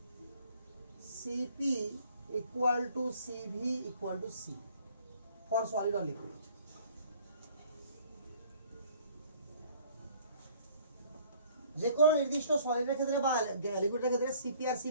C P equal to C V equal to C for solid or liquid. যে কোনো নির্দিষ্ট সলিডের ক্ষেত্রে বা লিকুইডের ক্ষেত্রে সিপি আর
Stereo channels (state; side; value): inverted; both; correlation -0.56